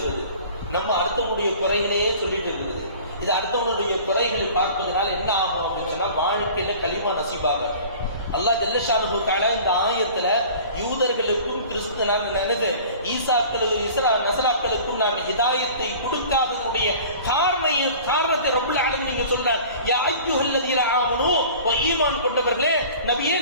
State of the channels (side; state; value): both; inverted; correlation -0.44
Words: நம்ம அடுத்தவனுடைய குறைகளையே சொல்லிட்டு இருக்குது. இது அடுத்தவனுடைய குறைகளை பார்ப்பதனால என்ன ஆகும் அப்படின்னு சொன்னா வாழ்க்கையில களிமா நசீபாக. அல்லாஹ் ஜல்ல ஷானுஹு தஆலா இந்த ஆயத்துல யூதர்களுக்கும் நசராக்களுக்கும் நான் ஹிதாயத்தை கொடுக்காததுடைய காரணத்தை ரப்புல் ஆலமீன் நீங்க சொல்றார். யா அய்யுஹல்லதீன ஆமனூ, ஈமான் கொண்டவர்களே நபியே